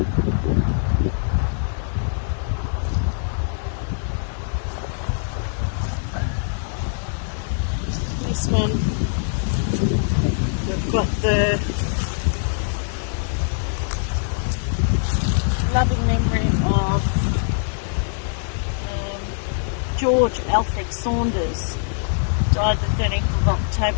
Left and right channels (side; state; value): right; silent; 63 dB below the other